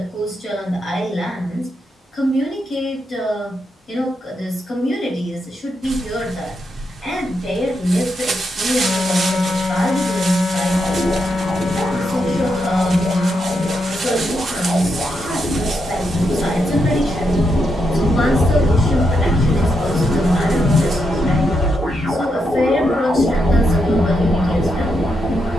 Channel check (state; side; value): normal; both; correlation 0.82